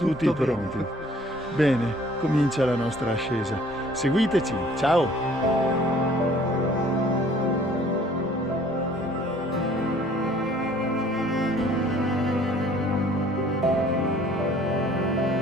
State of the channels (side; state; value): both; normal; correlation 0.55